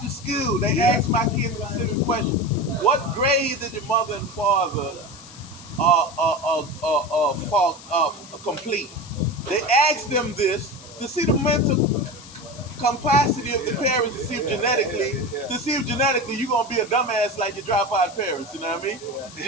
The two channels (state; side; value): noise; left; hiss, 18 dB below the sound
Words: school, they ask my kids specific questions. What grade did your mother and father complete? They ask them this to see the mental capacity of the parents to see if genetically you're gonna be a dumbass like your dropout parents, you know what I mean?